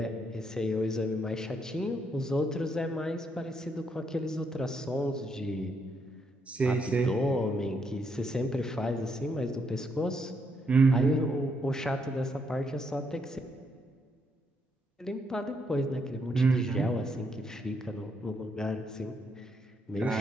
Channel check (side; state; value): both; normal; correlation 0.76